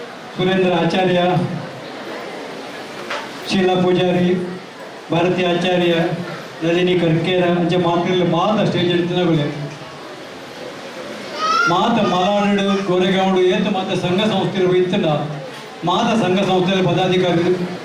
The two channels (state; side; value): identical; both; correlation 1.00